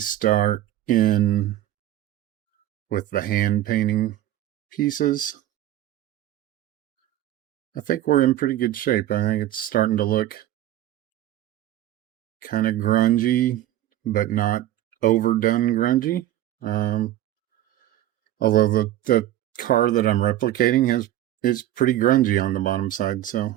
in with the hand painting pieces. I think we're in pretty good shape. I think it's starting to look kind of grungy, but not overdone grungy. Um, Although the car that I'm replicating is pretty grungy on the bottom side, so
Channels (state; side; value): quieter; left; 13.4 dB